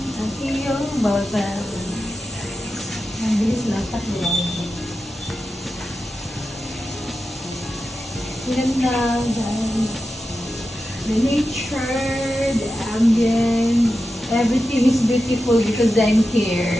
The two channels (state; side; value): normal; both; correlation 0.91